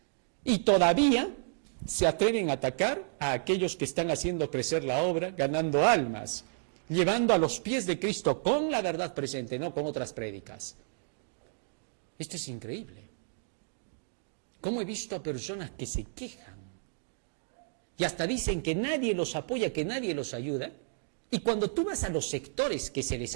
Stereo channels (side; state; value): left; silent; digital silence